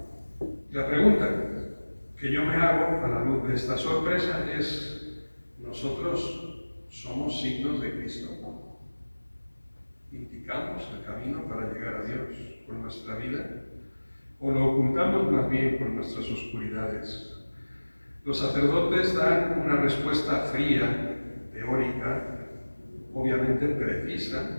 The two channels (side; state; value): both; inverted; correlation -1.00